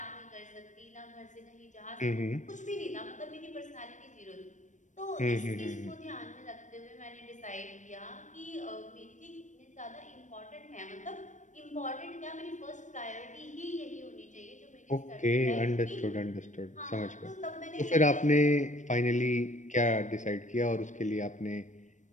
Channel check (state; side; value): late; right; 0.36 ms